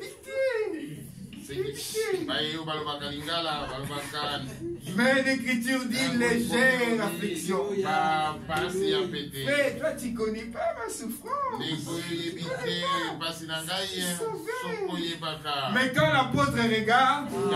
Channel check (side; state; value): both; identical; correlation 1.00